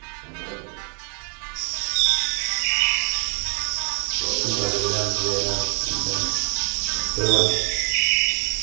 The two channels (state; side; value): quieter; left; 39.2 dB